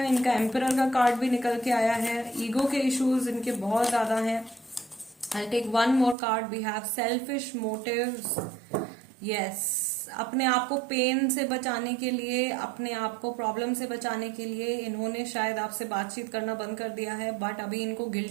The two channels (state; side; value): drops out; left; at 6.2 s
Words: इनका एम्परर का कार्ड भी निकल के आया है। ईगो के इश्यूज इनके बहुत ज्यादा हैं। I take one more card. We have selfish motives. Yes, अपने आप को पेन से बचाने के लिए, अपने आप को प्रॉब्लम से बचाने के लिए इन्होंने शायद आपसे बातचीत करना बंद कर दिया है। बट अभी इनको